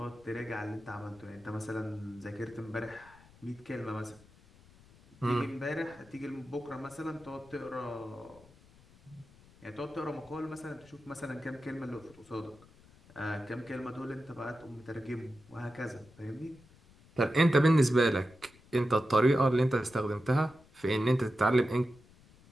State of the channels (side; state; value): left; noise; rumble, 25 dB below the sound